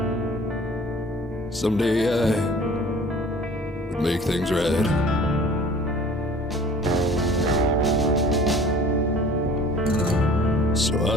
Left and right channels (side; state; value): both; normal; correlation 0.48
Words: someday I would make things right. So I